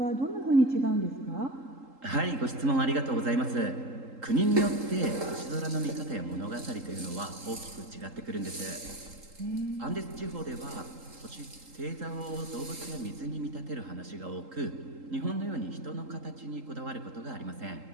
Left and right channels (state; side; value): late; left; 3.8 ms